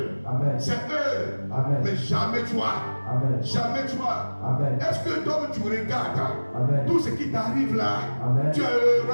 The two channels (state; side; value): inverted; both; correlation -1.00